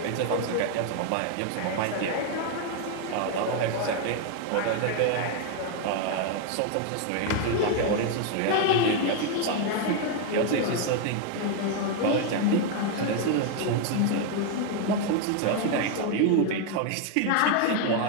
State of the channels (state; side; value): different; both; correlation 0.01